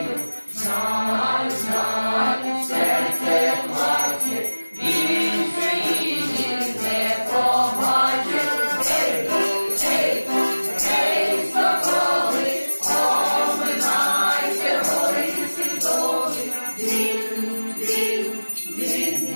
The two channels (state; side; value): inverted; both; correlation -1.00